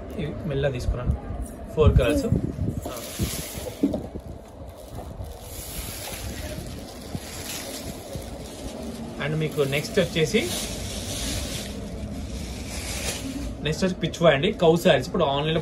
ఇవి మెల్ల తీసుకున్నాను, 4 కలర్స్. అండ్ మీకు నెక్స్ట్ వచ్చి పిచ్వా అండి, కౌ శారీస్. ఇప్పుడు ఆన్లైన్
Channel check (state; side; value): identical; both; correlation 1.00